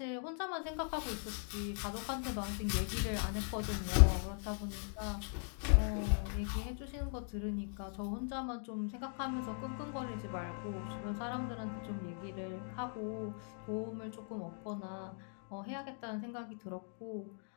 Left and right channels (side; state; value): right; silent; 52 dB below the other